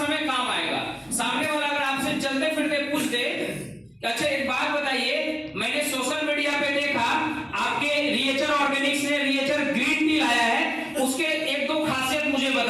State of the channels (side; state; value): both; identical; correlation 1.00